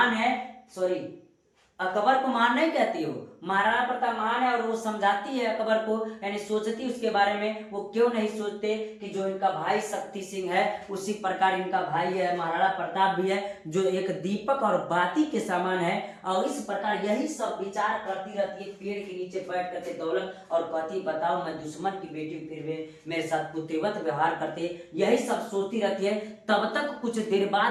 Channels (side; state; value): both; identical; correlation 1.00